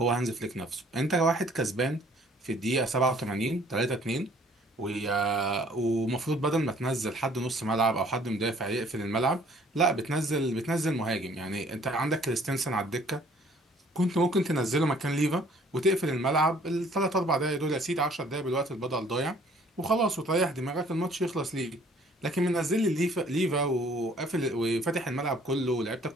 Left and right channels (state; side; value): normal; both; correlation 0.58